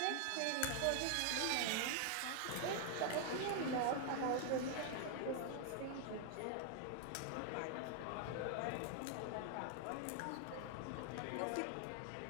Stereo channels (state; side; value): different; both; correlation 0.00